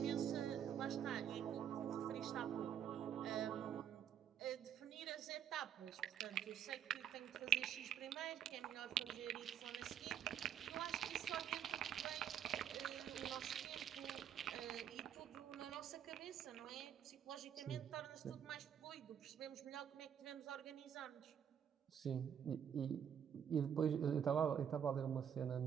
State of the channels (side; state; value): left; quieter; 9.1 dB